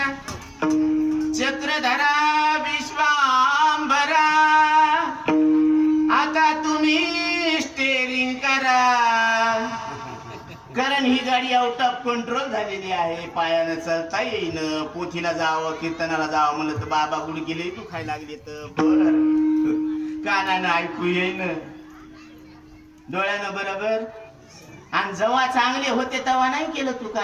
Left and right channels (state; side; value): identical; both; correlation 1.00